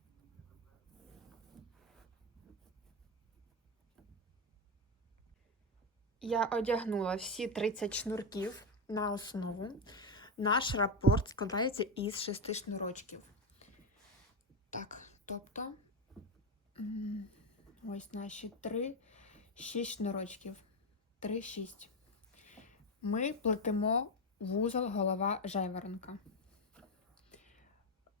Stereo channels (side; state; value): both; normal; correlation 0.10